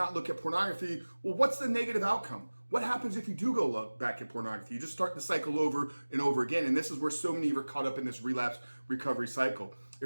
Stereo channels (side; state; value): both; inverted; correlation -1.00